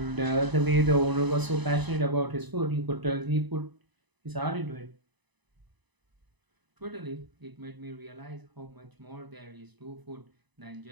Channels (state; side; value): late; left; 1.0 ms